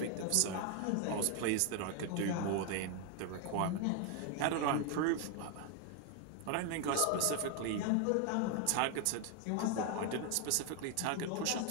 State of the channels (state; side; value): different; both; correlation 0.01